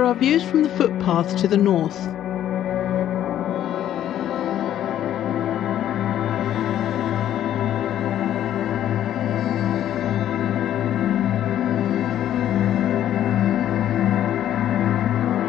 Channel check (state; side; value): quieter; right; 11.4 dB